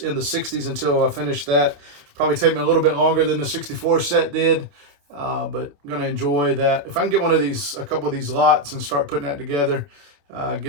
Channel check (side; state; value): left; late; 28 ms